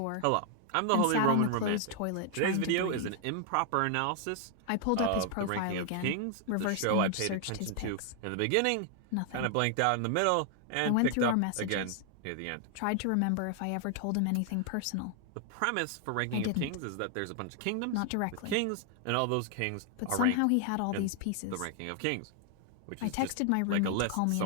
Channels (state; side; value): different; both; correlation 0.00